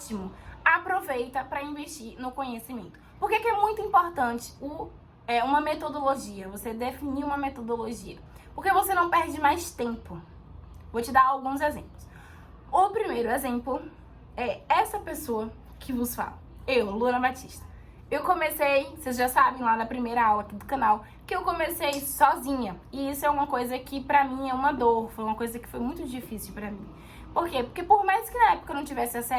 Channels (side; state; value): both; identical; correlation 1.00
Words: Aproveita para investir no conhecimento. Por que é muito importante uma metodologia? Você definir uma metodologia. Porque você não perde mais tempo. Vou te dar alguns exemplos. O primeiro exemplo é essa pessoa que vos fala. Eu, Luana Batista. Eu comecei, vocês já sabem lá na primeira aula aqui do canal, que eu comecei sozinha. E isso é uma coisa que pra mim é uma dor, foi uma coisa que foi muito difícil pra mim. Por quê? Porque por mais que na época eu não tivesse